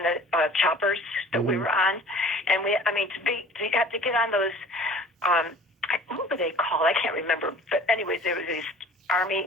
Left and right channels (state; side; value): normal; both; correlation 0.47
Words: the choppers that we were on. And to have to get on those, what were they called? I can't remember. But anyways, there was these